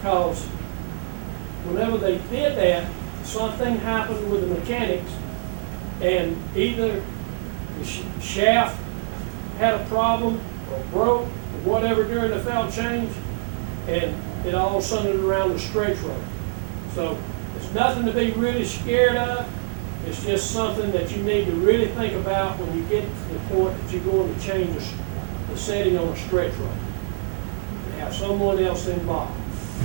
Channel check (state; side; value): silent; left; digital silence